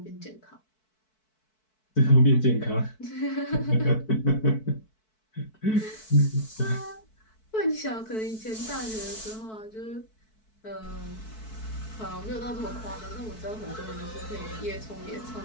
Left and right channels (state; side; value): late; right; 4.6 ms